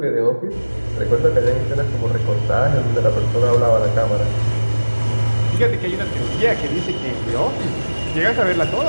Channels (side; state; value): both; inverted; correlation -1.00